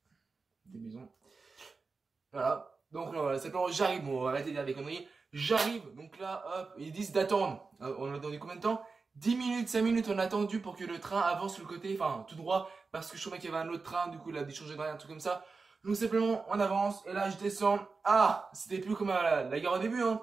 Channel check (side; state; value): left; quieter; 4.3 dB